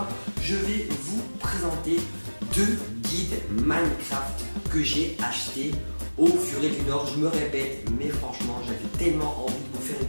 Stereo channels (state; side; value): inverted; both; correlation -1.00